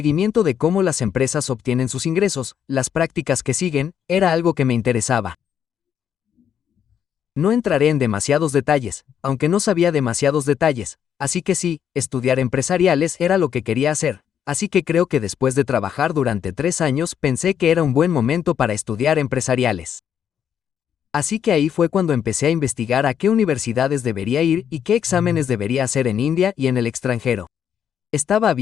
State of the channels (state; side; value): quieter; right; 8.7 dB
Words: de cómo las empresas obtienen sus ingresos, las prácticas que siguen, era algo que me interesaba. No entraré en demasiados detalles, aunque no sabía demasiados detalles, así que sí, estudiar empresariales era lo que quería hacer, así que creo que después de trabajar durante 3 años pensé que era un buen momento para estudiar empresariales. Así que ahí fue cuando empecé a investigar a qué universidades debería ir y qué exámenes debería hacer en India y en el extranjero. Estaba